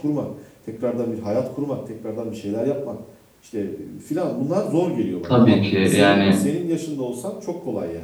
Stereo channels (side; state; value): both; identical; correlation 1.00